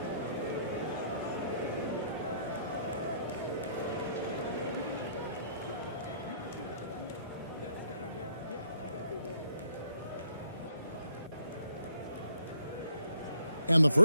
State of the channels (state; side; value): inverted; both; correlation -0.69